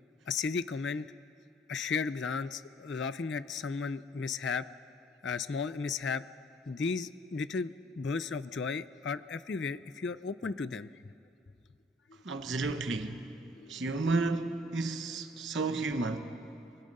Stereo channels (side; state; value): both; normal; correlation 0.58